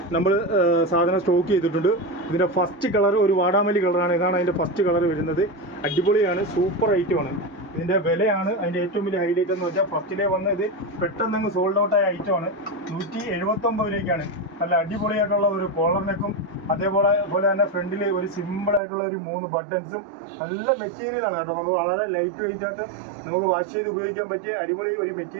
നമ്മൾ സാധനം സ്റ്റോക്ക് ചെയ്തിട്ടുണ്ട്. ഇതിൻ്റെ ഫസ്റ്റ് കളർ ഒരു വാടാമല്ലി കളറാണ്. ഇതാണ് അതിൻ്റെ ഫസ്റ്റ് കളർ വരുന്നത്. അടിപൊളിയാണ്, സൂപ്പർ ഐറ്റമാണ്. ഇതിൻ്റെ വിലയാണ് അതിൻ്റെ ഏറ്റവും വലിയ ഹൈലൈറ്റ് എന്ന് വെച്ചാൽ ഫസ്റ്റിലേ വന്ന് ഇത് പെട്ടെന്ന് സോൾഡ് ഔട്ടായ ഐറ്റമാണ്. 179 രൂപയ്ക്കാണ്. നല്ല അടിപൊളിയായിട്ടുള്ള ഒരു കോളർ നെക്കും അതേപോലെ തന്നെ ഫ്രണ്ടിൽ ഒരു സിമ്പിളായിട്ടുള്ള ഒരു 3 ബട്ടൺസും നല്ല മെറ്റീരിയലാണ് കേട്ടോ. നമുക്ക് വളരെ ലൈറ്റ് വെയിറ്റ് ആയിട്ട് നമുക്ക് വാഷ് ചെയ്ത് ഉപയോഗിക്കാൻ പറ്റിയ അടിപൊളി ഒരു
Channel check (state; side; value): drops out; left; at 18.8 s